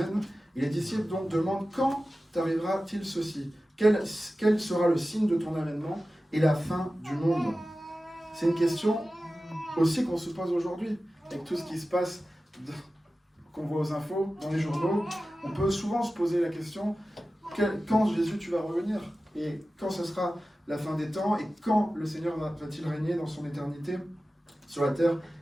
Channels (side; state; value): both; normal; correlation 0.95